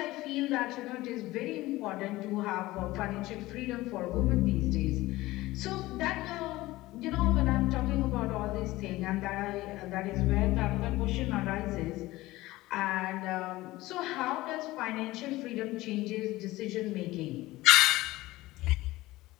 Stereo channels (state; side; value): quieter; right; 18.3 dB